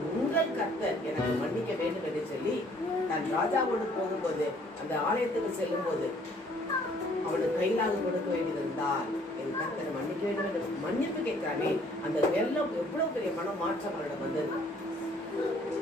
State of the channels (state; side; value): normal; both; correlation 0.60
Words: உங்கள் கர்த்தர் எனக்கு மன்னிக்க வேண்டும் என்று சொல்லி தன் ராஜாவோடு போகும்போது, அந்த ஆலயத்துக்கு செல்லும் போது அவனுக்கு கையிலாக கொடுக்க வேண்டியிருந்தால் என் கர்த்தரை மன்னிக்க வேண்டும் என்று மன்னிப்பு கேட்கிறானே, அந்த வெள்ளம் எவ்வளவு பெரிய மனம் மாற்றம் அவனிடம் வந்தது.